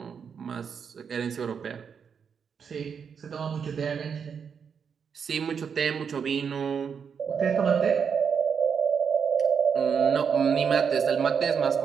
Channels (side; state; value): left; quieter; 6.7 dB